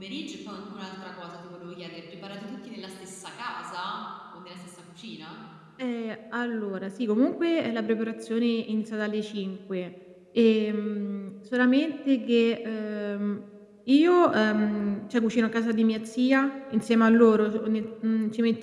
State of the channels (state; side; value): identical; both; correlation 1.00